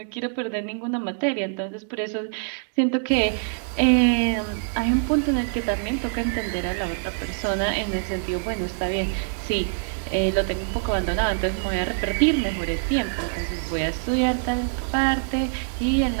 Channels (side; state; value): left; silent; digital silence